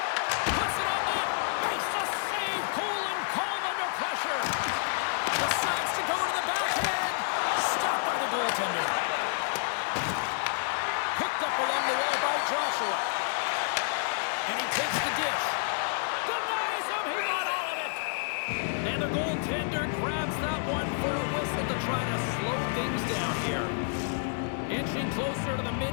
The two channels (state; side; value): silent; right; 57 dB below the other